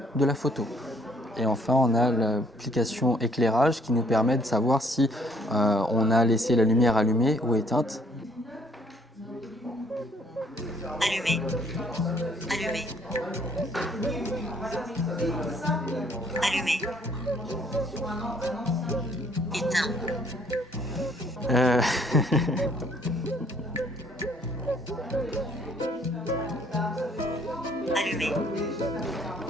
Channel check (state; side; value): normal; both; correlation 0.63